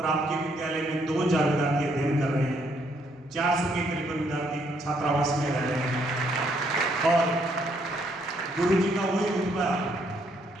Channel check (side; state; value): both; normal; correlation 0.71